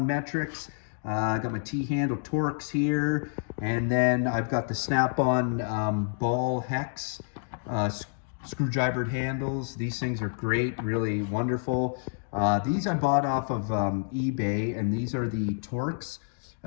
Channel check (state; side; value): silent; right; digital silence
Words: metrics. I got my T-handle Torx here, and then I've got the Snap-on ball hex screwdrivered handles. These things are great, really wonderful. These I bought off of eBay, and these are the Torx,